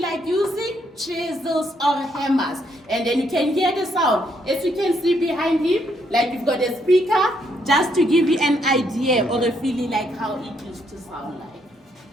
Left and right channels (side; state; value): both; normal; correlation 0.74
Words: using chisels or hammers. And then you can hear the sound. As you can see behind him, like you've got a speaker, just to give you an idea or a feeling like how it used to sound like.